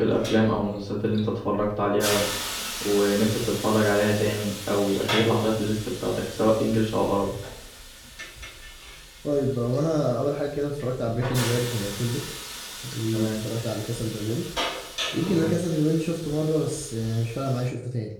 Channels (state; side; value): identical; both; correlation 1.00